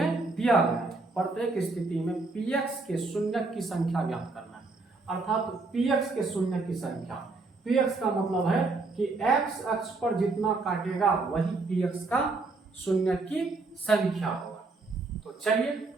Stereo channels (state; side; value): quieter; left; 3.6 dB